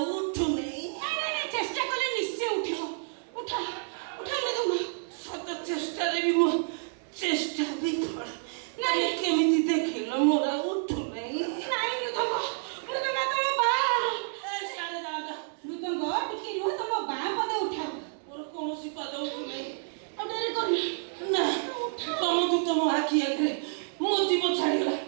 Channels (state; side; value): silent; left; digital silence